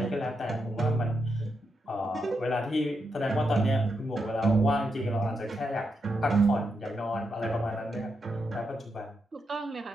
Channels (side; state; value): both; normal; correlation 0.83